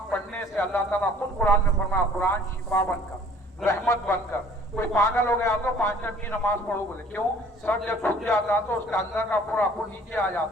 पढ़ने से अल्लाह ताला खुद कुरान में फरमाया, कुरान शिफा बनकर, रहमत बनकर। कोई पागल हो गया तो 5 टाइम की नमाज पढ़ो, बोले क्यों? सर जब झुक जाता तो उसका अंदर का पूरा खून नीचे आ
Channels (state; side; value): normal; both; correlation 0.54